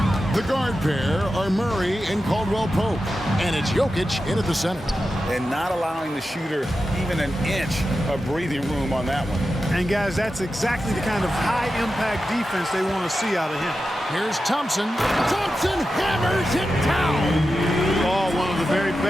The guard pair are Murray and Caldwell Pope. And it's Jokic in at the center. And not allowing the shooter even an inch of breathing room on that one. And guys, that's exactly the kind of high-impact defense they want to see out of him. Here's Thompson. Thompson hammers it down. Oh, one of the very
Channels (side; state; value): both; normal; correlation 0.91